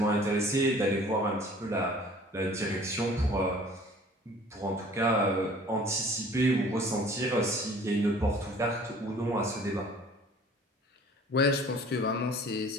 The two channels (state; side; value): normal; both; correlation 0.50